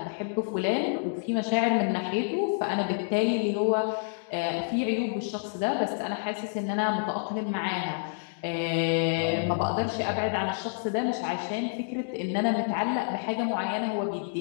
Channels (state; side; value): silent; right; digital silence